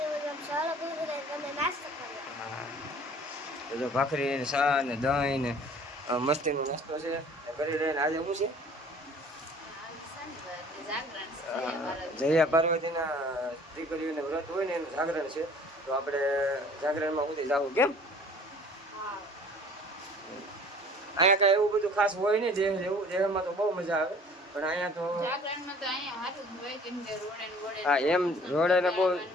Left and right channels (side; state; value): both; normal; correlation 0.50